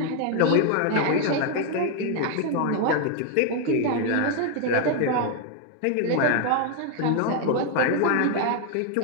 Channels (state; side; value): different; both; correlation 0.01